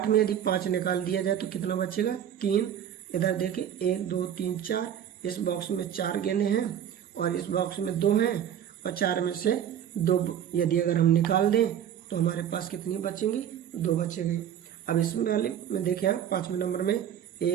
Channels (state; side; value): quieter; left; 9.7 dB